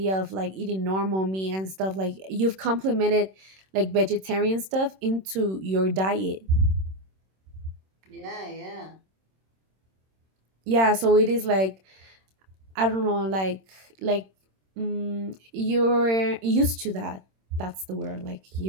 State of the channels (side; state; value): left; late; 26 ms